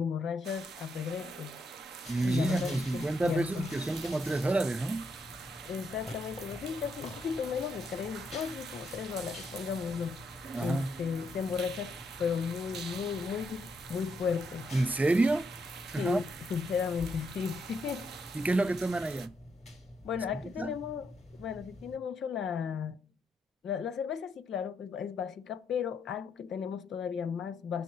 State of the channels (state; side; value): normal; both; correlation 0.78